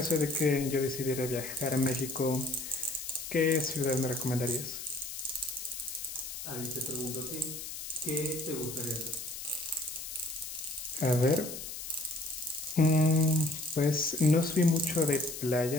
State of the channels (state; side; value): noise; left; hiss, 8 dB below the sound